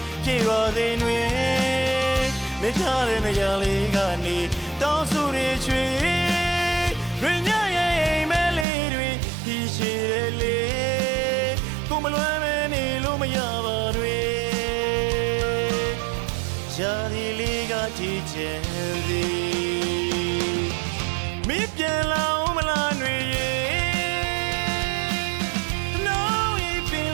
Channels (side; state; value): left; drops out; at 8.7 s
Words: ပြေပါစေနွေမထားတဲ့နေရာလေးကနေတောင်းဆိုတွေချွေတွင်ညရဲ့အိမ်မဲလေးတွေဒီရှိတယ်လေကိုမလွမ်းမနေလို့မရပါတွေရှားဒီလေးကကြည့်ချင်သည်မင်းပြန်လာဦးမလားနွေရဲ့